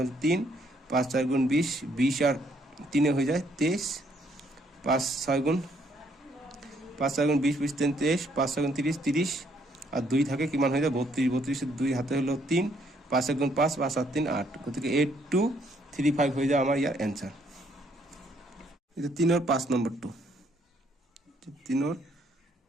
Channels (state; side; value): normal; both; correlation 0.69